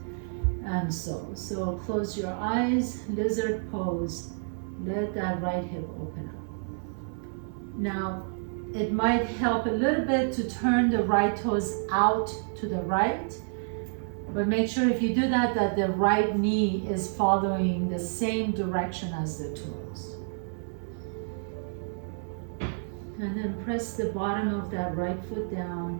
and so. So close your eyes, lizard pose. Let that right hip open up. Now, it might help a little bit to turn the right toes out to the right, but make sure if you do that, that the right knee is following the same direction as the toes. And then press the bottom of that right foot down.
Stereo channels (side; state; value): left; silent; 58 dB below the other